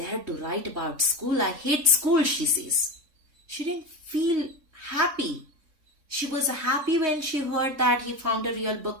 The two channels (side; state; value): left; late; 3.6 ms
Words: to write about school? I hate school," she says. She didn't feel happy. She was happy when she heard that he found a real book,